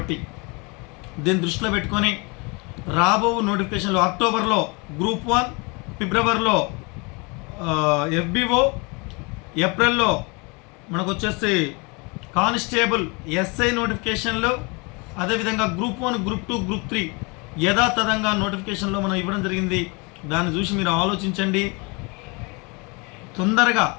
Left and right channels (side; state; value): right; quieter; 29.5 dB